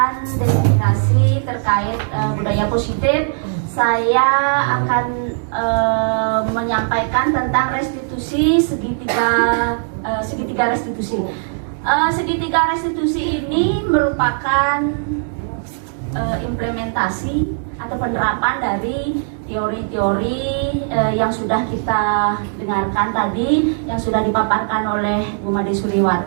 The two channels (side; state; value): left; silent; digital silence